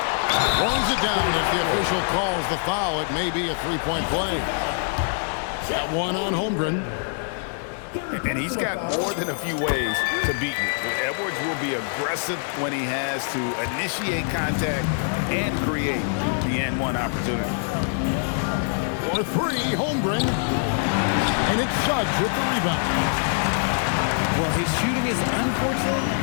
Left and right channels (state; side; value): silent; right; 62 dB below the other